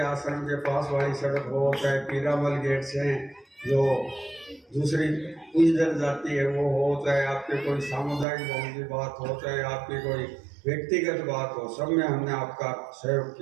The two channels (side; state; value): left; drops out; at 8.2 s